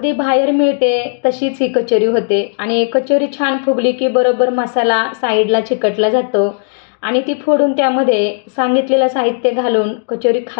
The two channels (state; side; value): silent; right; digital silence